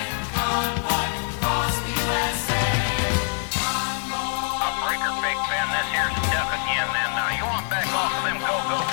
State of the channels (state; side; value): silent; right; 62 dB below the other